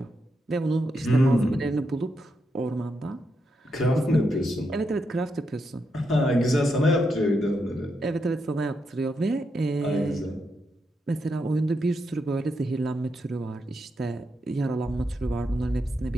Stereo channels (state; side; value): normal; both; correlation 0.83